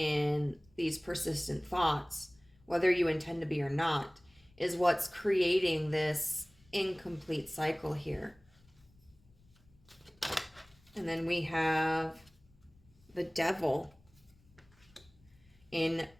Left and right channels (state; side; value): noise; left; rumble, 30 dB below the sound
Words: these persistent thoughts, whether you intend to be or not, is what's creating this incomplete cycle here. And then we have the devil in